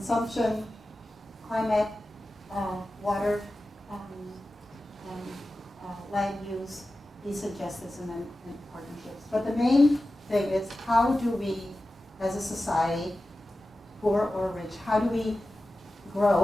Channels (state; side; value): normal; both; correlation 0.94